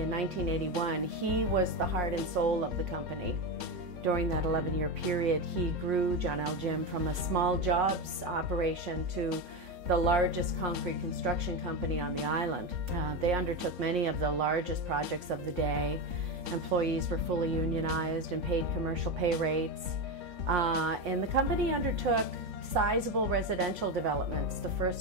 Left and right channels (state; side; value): late; left; 3.5 ms